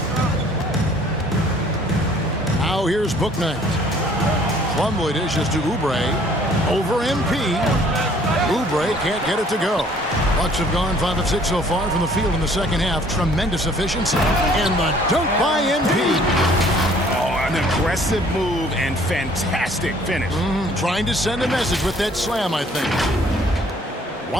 Now here's Bouknight. Plumlee dishes to Oubre. Over MP. Oubre can't get it to go. Bucks have gone 5 of 6 so far from the field in the second half. Tremendous efficiency. And the dunk by MP. Oh, an aggressive move and fantastic finish. Trying to send a message with that slam, I think.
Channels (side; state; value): both; normal; correlation 0.57